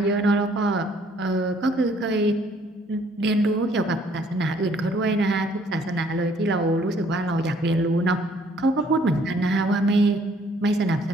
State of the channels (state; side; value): normal; both; correlation 0.62